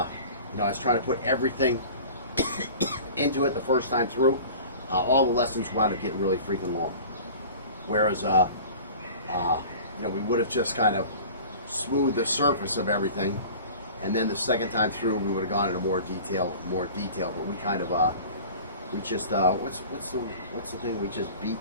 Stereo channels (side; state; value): both; inverted; correlation -0.40